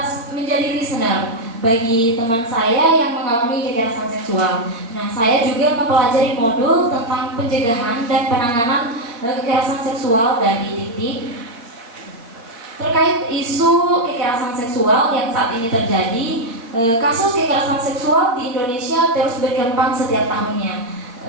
menjadi listener bagi teman saya yang mengalami kekerasan seksual. Nah, saya juga mempelajari modul tentang pencegahan dan penanganan kekerasan seksual dari Dikti. Terkait isu kekerasan seksual yang saat ini terjadi, kasus kekerasan seksual di Indonesia terus berkembang setiap tahunnya.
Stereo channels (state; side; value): late; left; 4.2 ms